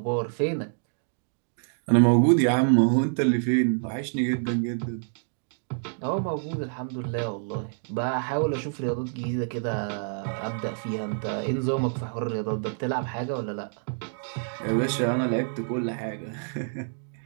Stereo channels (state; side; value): silent; left; digital silence